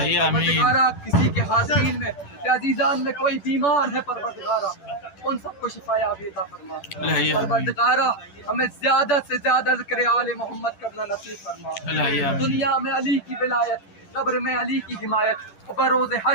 کسی کے حاضرین میں یا عزیزان میں کوئی بیمار ہے پروردگارا ان سب کو شفا یابی عطا فرما پروردگارا ہمیں زیادہ سے زیادہ ذکر آل محمد کرنا نصیب فرما دنیا میں علی کی ولایت قبر میں علی کی حمایت اور بروز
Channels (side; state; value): right; late; 10 ms